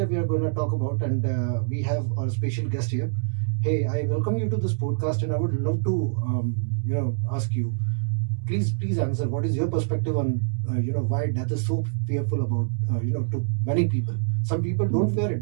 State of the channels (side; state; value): left; silent; digital silence